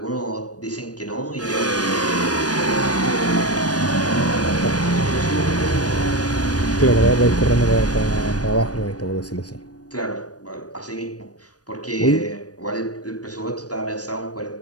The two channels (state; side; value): late; right; 0.68 ms